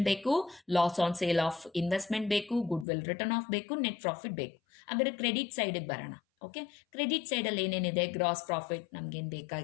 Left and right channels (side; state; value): right; drops out; at 2.9 s